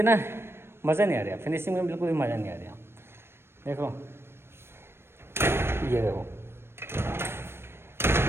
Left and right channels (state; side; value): late; left; 0.12 ms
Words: ना मज़ा नहीं आ रहा, फिनिशिंग में बिल्कुल भी मज़ा नहीं आ रहा। देखो ये देखो,